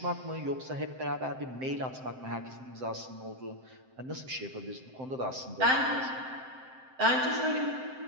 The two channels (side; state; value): left; late; 7.7 ms